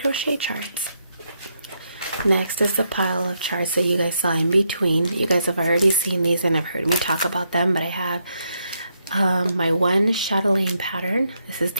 charts. Next is the pile of charts that you guys saw in between. You guys have already seen these and have heard me talk about them, but I have my one chatelaine pattern. This is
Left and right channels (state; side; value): inverted; both; correlation -0.79